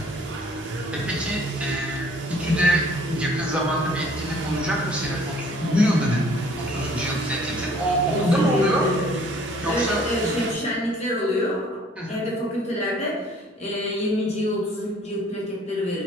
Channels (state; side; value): normal; both; correlation 0.56